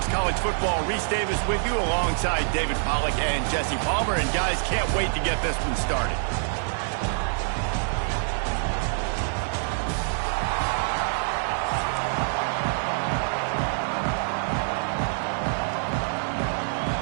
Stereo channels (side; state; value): left; silent; 61 dB below the other